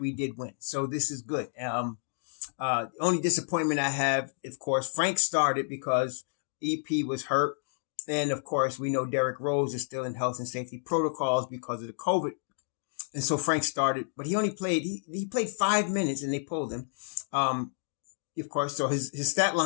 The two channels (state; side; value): silent; right; digital silence